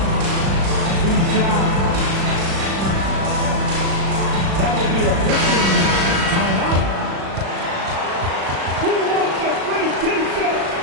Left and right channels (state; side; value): late; left; 36 ms